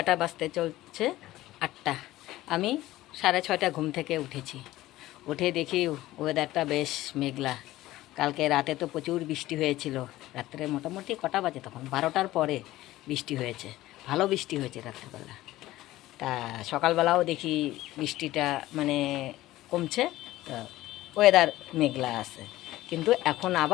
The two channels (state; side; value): quieter; right; 16.3 dB